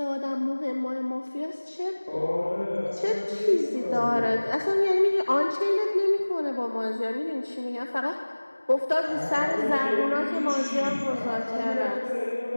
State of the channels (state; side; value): inverted; both; correlation -1.00